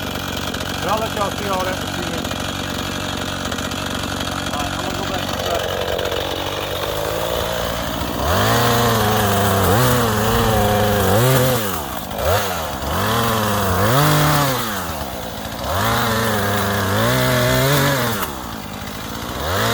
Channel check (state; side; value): identical; both; correlation 1.00